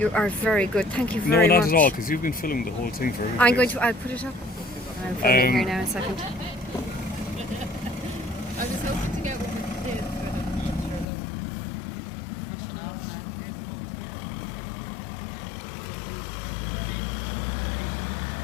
are very good. Thank you No, very not much. at all, because you've been filming the whole thing for everybody. I'm going to. I'll put it up. I'm filming here now. A second. I was hoping to get what we did for the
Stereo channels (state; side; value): drops out; right; at 11.1 s